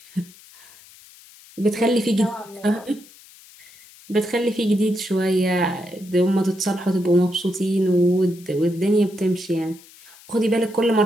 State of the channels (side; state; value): left; noise; hiss, 23 dB below the sound